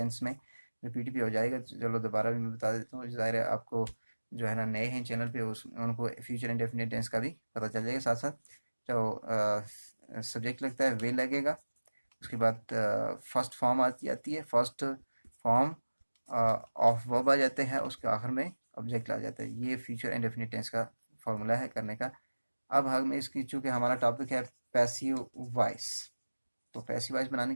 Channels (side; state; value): both; inverted; correlation -1.00